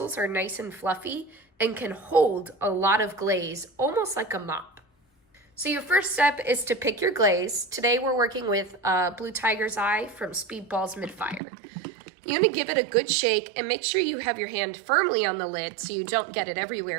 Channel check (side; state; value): left; drops out; at 11.4 s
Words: are nice and fluffy and can hold a lot of glaze, almost like a mop. So your first step is to pick your glaze. Today we're working with Blue Tiger's Eye from Speedball's Mid Fire. You want to give it a good shake and make sure you have your hand firmly on the lid so you don't get it